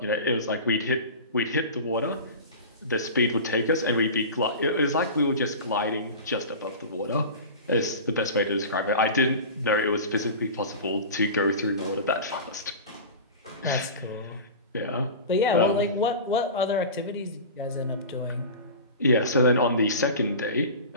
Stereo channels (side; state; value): both; inverted; correlation -0.32